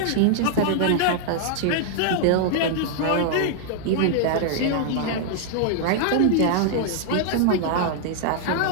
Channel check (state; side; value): different; both; correlation -0.01